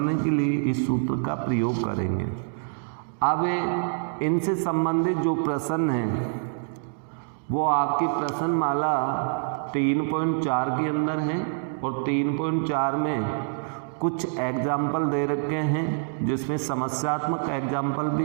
के लिए इस सूत्र का प्रयोग करेंगे। अब इनसे संबंधित जो प्रश्न है वो आपकी प्रश्नमाला 3.4 के अंदर है और 3.4 में कुछ एग्जाम्पल दे रखे हैं, जिसमें समस्यात्मक एग्जाम्पल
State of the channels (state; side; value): silent; left; digital silence